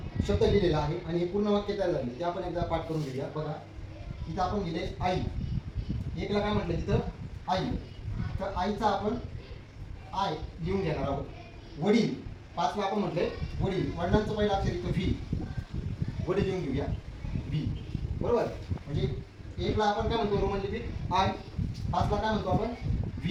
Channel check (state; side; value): identical; both; correlation 1.00